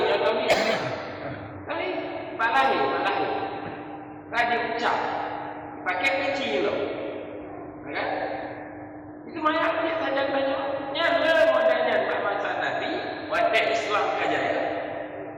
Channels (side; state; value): both; identical; correlation 1.00